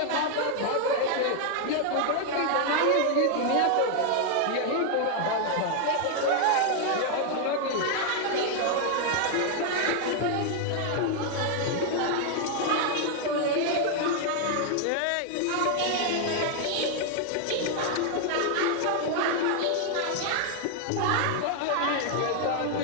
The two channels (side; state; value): both; different; correlation 0.00